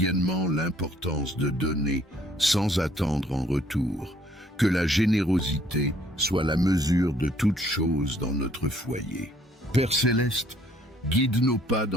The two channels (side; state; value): both; normal; correlation 0.62